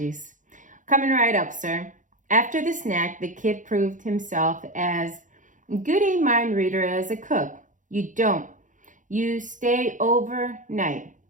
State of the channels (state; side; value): late; left; 0.37 ms